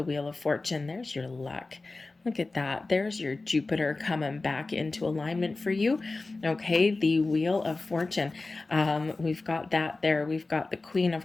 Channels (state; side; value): quieter; right; 3.4 dB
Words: Wheel of Fortune. There's your luck. Look at that. There's your Jupiter coming back into alignment for you. Okay, the Wheel of Fortune. We've got that there. We've got the Queen